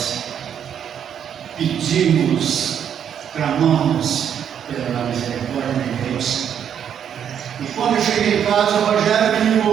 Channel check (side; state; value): left; quieter; 8.7 dB